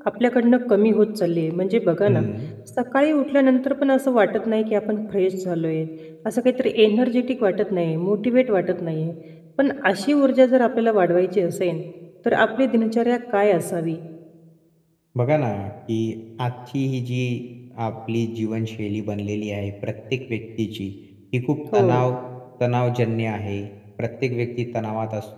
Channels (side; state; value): both; identical; correlation 1.00